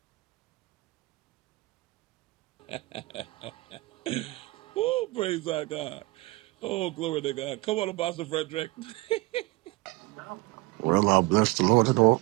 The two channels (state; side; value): quieter; left; 21.9 dB